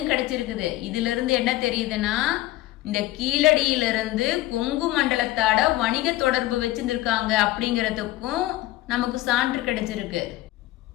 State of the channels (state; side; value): quieter; right; 16.7 dB